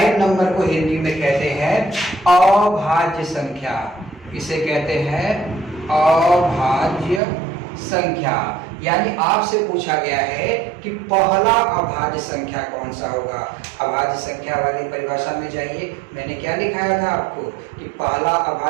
नंबर को हिंदी में कहते हैं अभाज्य संख्या। इसे कहते हैं अभाज्य संख्या। यानी आपसे पूछा गया है कि पहला अभाज्य संख्या कौन सा होगा। अभाज्य संख्या वाली परिभाषा में जाइए, मैंने क्या लिखाया था आपको कि पहला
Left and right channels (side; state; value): left; drops out; at 7.2 s